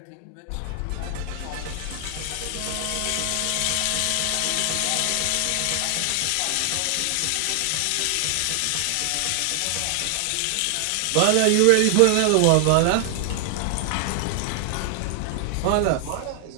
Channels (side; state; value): both; different; correlation 0.00